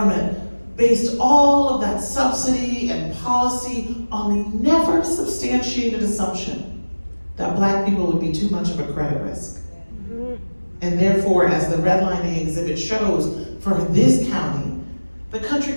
based all of that subsidy and policy on the never substantiated assumption that Black people would be too much of a credit risk. And therefore, as the redlining exhibit shows, for this county, the country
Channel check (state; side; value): inverted; both; correlation -1.00